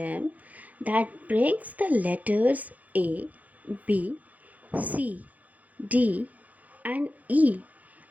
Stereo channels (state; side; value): late; left; 0.077 ms